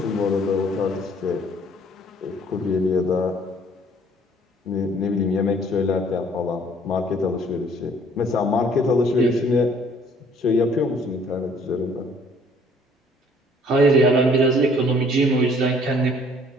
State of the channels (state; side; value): normal; both; correlation 0.59